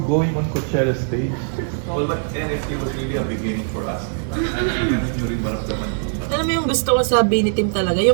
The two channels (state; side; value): silent; left; 63 dB below the other